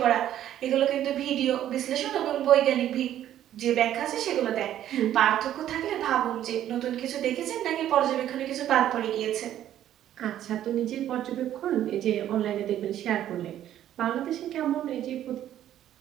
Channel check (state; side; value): quieter; left; 11.7 dB